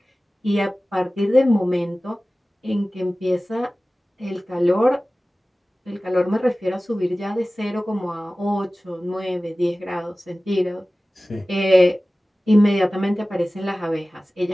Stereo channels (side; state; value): both; normal; correlation 0.97